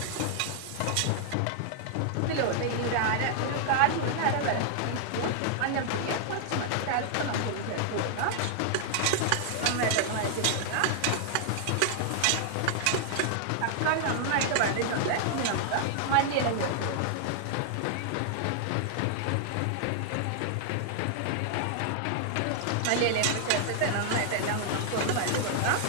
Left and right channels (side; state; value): both; different; correlation -0.01